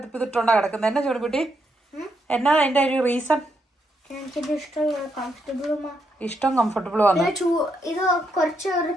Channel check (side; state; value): both; normal; correlation 0.79